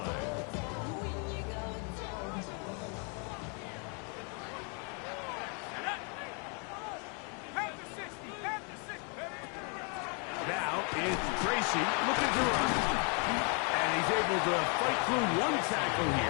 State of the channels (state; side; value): quieter; right; 36.9 dB